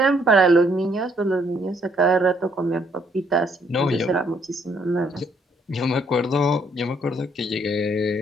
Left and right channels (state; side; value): normal; both; correlation 0.68